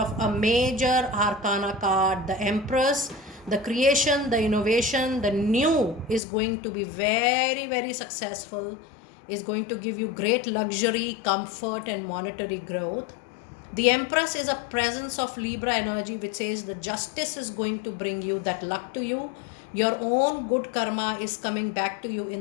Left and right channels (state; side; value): drops out; right; at 6.2 s